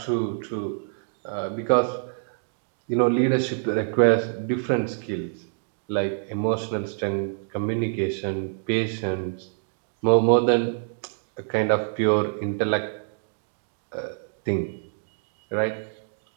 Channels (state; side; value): silent; left; digital silence